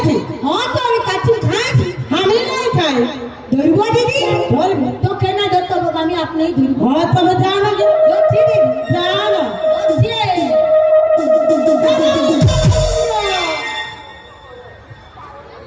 হ্যাঁ তো আমি কাচ্ছি খাইছি আমি নাই খাই ধরব দিদি ধরব তো কেন ধরতে হবে আমি আপনিই ধরব হ্যাঁ তবে যাও না ধরছি দিদি যাও না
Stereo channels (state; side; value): identical; both; correlation 1.00